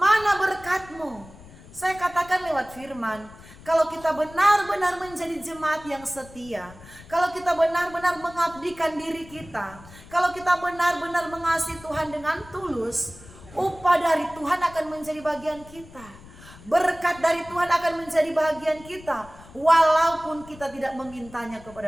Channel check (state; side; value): noise; left; rumble, 20 dB below the sound